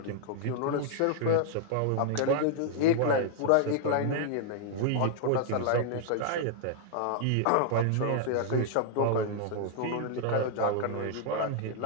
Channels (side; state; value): both; different; correlation -0.01